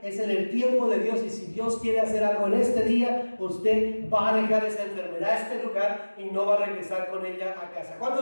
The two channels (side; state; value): both; inverted; correlation -1.00